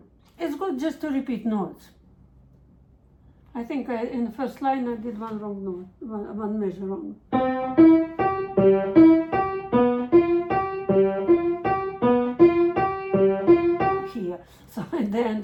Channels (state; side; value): identical; both; correlation 1.00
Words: is good just to repeat notes. I think in the first line I did one wrong note, one measure wrong. Here, so at the